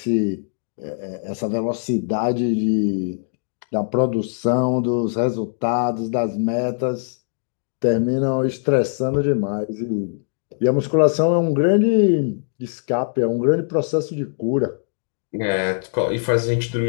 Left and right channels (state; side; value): silent; right; digital silence